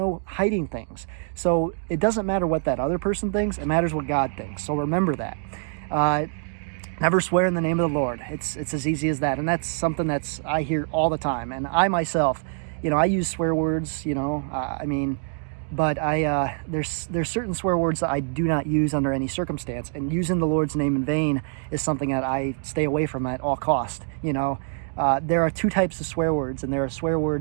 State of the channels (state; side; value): silent; left; 62 dB below the other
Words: hiding things. So it doesn't matter what that other person thinks. It matters what God thinks. So remember that. Never swear in the name of the Lord. It's as easy as that. And that's something I hear all the time. And I myself, I use swear words, but there's certain swear words that I do not use under any circumstance, and using the Lord's name in vain is something that I stay away from at all cost. There are two types of swear words, and there are swear